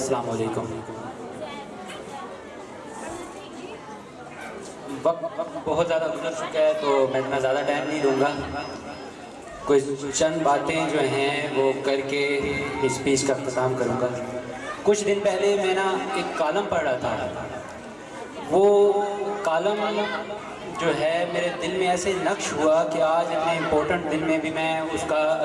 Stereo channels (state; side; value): identical; both; correlation 1.00